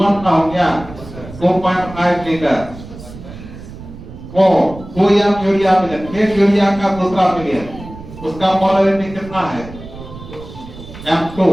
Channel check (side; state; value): right; noise; rumble, 15 dB below the sound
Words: का हो गया 2.5 लीटर को 2 एम यूरिया मिले, एक यूरिया का दूसरा मिले, उसका मोलरिटी कितना है? M2